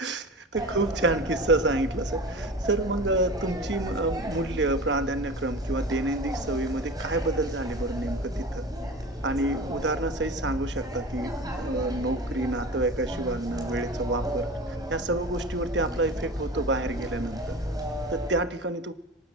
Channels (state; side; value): normal; both; correlation 0.34